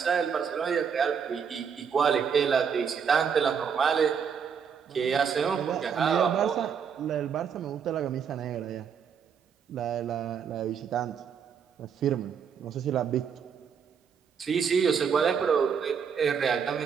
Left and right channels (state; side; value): quieter; left; 6.9 dB